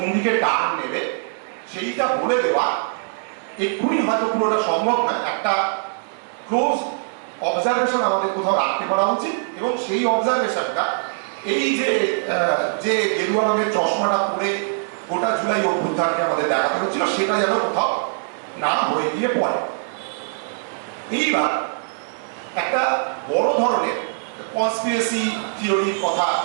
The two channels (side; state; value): left; silent; digital silence